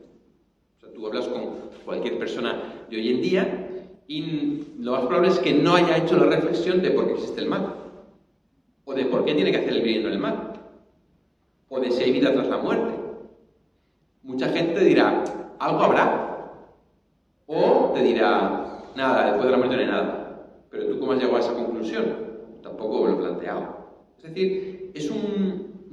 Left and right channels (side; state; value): both; identical; correlation 1.00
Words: O sea, tú hablas con cualquier persona de hoy en día y lo más probable es que no haya hecho la reflexión de por qué existe el mal. O de por qué tiene que hacer el bien y no el mal. O de si hay vida tras la muerte. Mucha gente te dirá, algo habrá. O te dirá, nada, después de la muerte no hay nada. Pero tú, ¿cómo has llegado a esa conclusión? Tampoco lo he planteado. Es decir, es